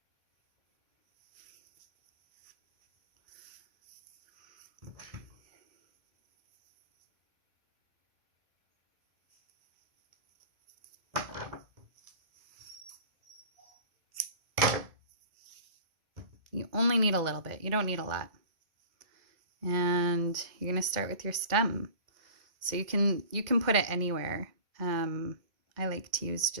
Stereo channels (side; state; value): left; late; 2.1 ms